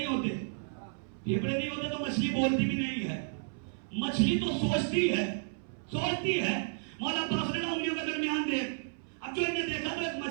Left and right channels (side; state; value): left; silent; 56 dB below the other